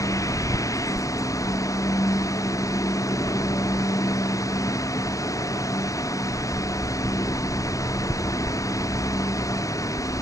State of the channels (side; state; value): right; late; 0.16 ms